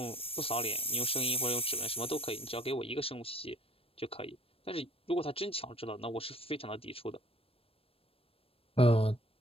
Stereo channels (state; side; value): late; right; 0.28 ms